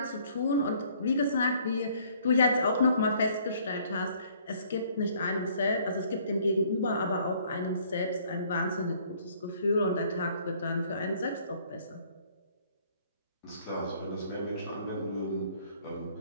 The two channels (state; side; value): inverted; both; correlation -0.60